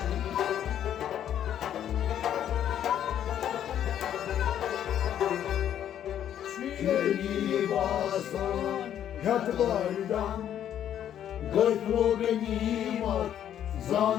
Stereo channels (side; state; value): right; quieter; 10.3 dB